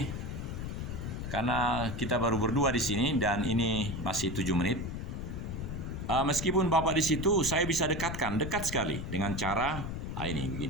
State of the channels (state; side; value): noise; left; rumble, 5 dB below the sound